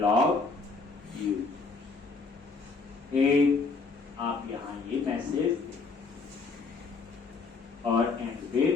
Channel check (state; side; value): quieter; right; 4.2 dB